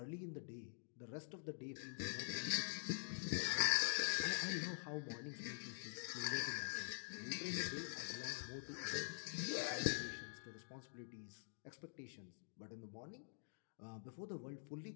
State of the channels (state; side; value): silent; right; digital silence